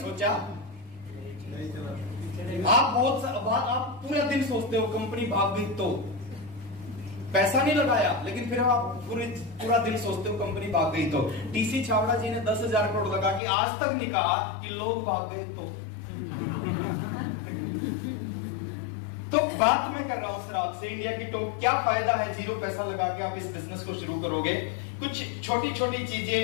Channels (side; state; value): right; drops out; at 13.4 s